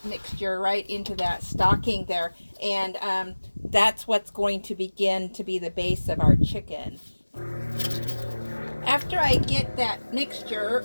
mixture right into that stocking there, and that's what's going to begin to be the base of our chicken. After I get that mixture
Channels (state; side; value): inverted; both; correlation -1.00